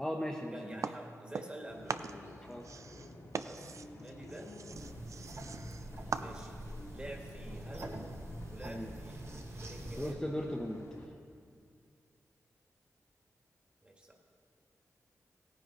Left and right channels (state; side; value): normal; both; correlation 0.82